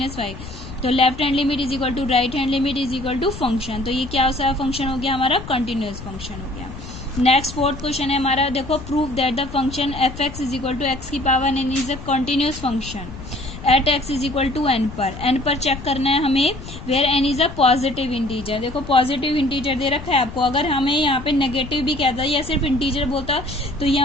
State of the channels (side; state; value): left; noise; rumble, 13 dB below the sound